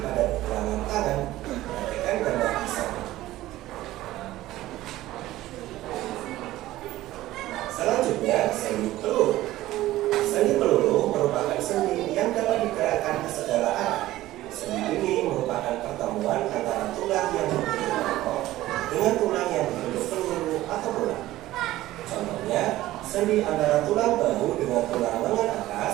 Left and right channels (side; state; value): left; quieter; 15.9 dB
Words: pada pergelangan tangan. Perhatikan gambar di sana. Selanjutnya, sendi peluru. Sendi peluru merupakan sendi yang dapat digerakkan ke segala arah. Sendi ini merupakan pertemuan antara tulang yang berbentuk mangkok dengan tulang yang berbentuk peluru atau bola. Contohnya, sendi antara tulang bahu dengan tulang lengan